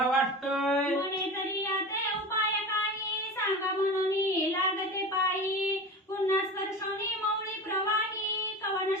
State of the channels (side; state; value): both; normal; correlation 0.30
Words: वाटतंय. म्हणे तरी आता उपाय काही सांगा म्हणून लागते पायी, पुन्हा स्पर्शोनी मौळी प्रवाही कवन